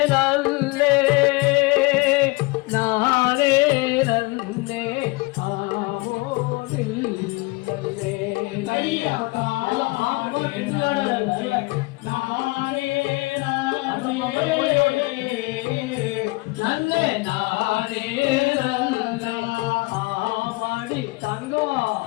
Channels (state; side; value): quieter; right; 24.9 dB